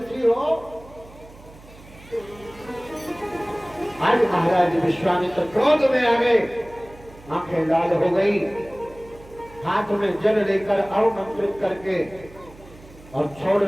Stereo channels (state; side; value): noise; right; hum, 21 dB below the sound